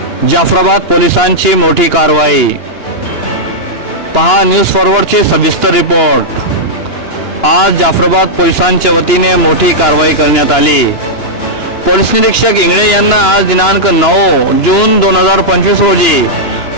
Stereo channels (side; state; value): right; late; 2.9 ms